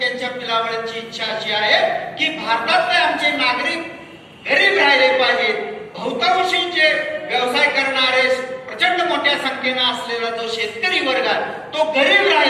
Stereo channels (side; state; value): both; identical; correlation 1.00